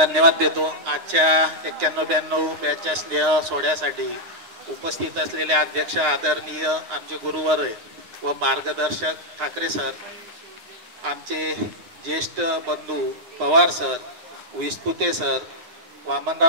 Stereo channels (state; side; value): late; left; 9.8 ms